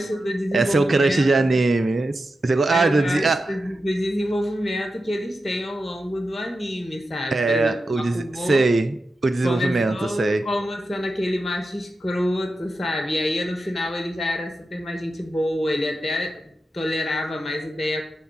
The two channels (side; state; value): both; normal; correlation 0.90